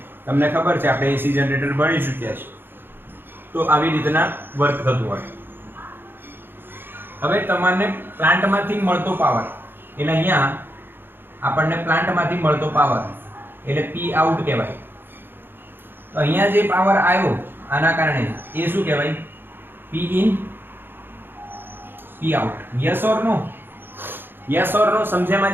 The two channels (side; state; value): left; late; 0.10 ms